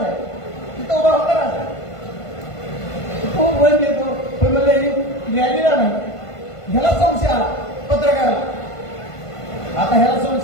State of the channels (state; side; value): late; right; 1.5 ms